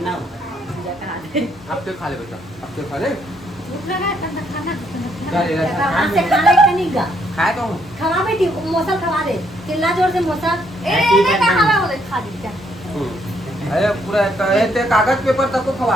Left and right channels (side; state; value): both; normal; correlation 0.71